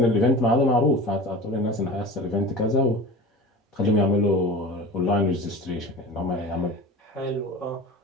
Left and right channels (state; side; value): normal; both; correlation 0.35